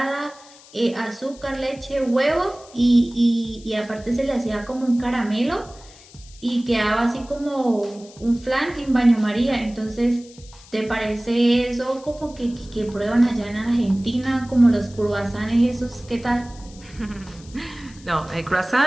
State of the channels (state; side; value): noise; left; hiss, 22 dB below the sound